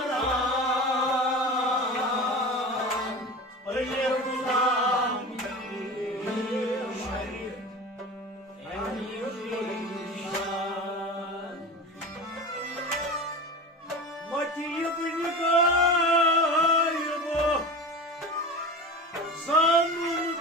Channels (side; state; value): both; normal; correlation 0.31